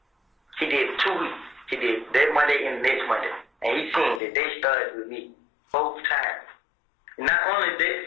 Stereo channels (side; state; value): right; drops out; at 4.2 s